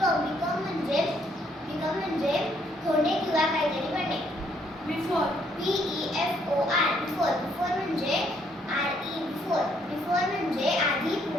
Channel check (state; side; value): normal; both; correlation 0.69